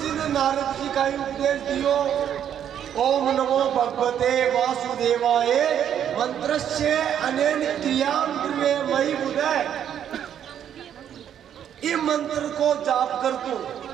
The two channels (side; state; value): left; quieter; 9.5 dB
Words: जी ने नारद जी का उपदेश दियो ओम नमो भगवते वासुदेवाय मंत्रस्य अनेन क्रियाम ध्रुवे मयि बुधे। इस मंत्र को जाप कर दो